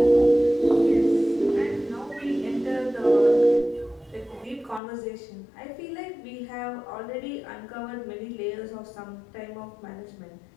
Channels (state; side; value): drops out; right; at 4.8 s